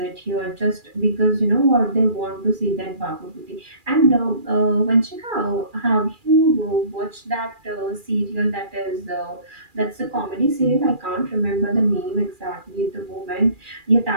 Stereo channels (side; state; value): left; late; 2.4 ms